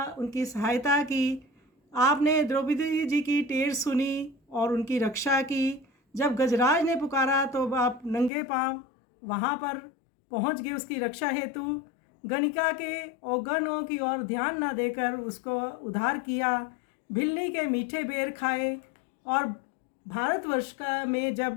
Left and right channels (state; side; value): drops out; right; at 8.3 s